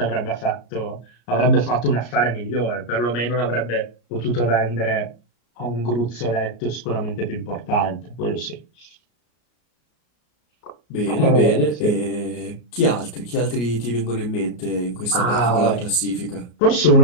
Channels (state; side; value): late; right; 34 ms